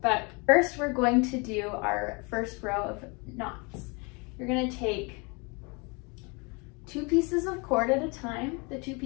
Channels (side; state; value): right; quieter; 30.6 dB